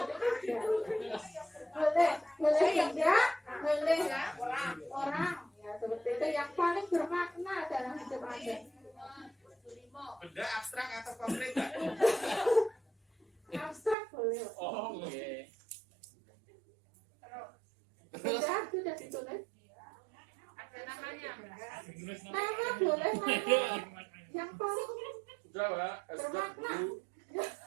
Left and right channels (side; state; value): left; drops out; at 14.0 s